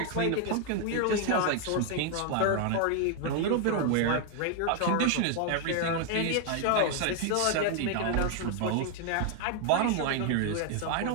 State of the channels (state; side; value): different; both; correlation 0.00